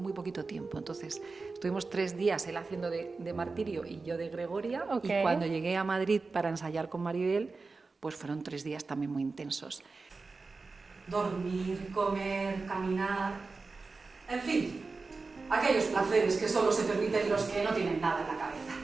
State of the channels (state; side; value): quieter; left; 4.0 dB